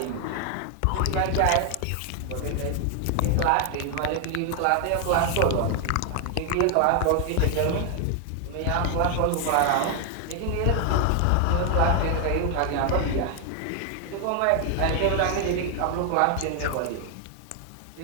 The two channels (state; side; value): different; both; correlation 0.00